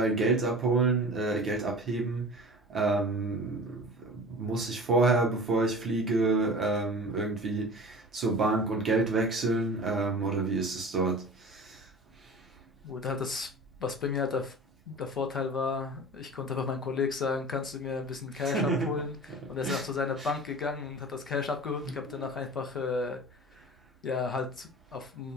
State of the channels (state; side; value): normal; both; correlation 0.38